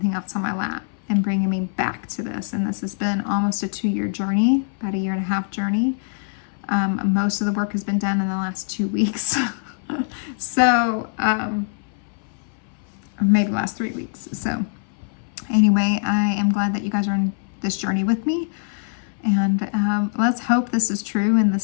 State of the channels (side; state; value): right; silent; 63 dB below the other